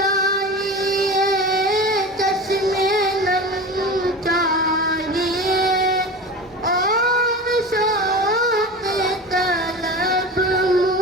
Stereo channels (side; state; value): both; normal; correlation 0.31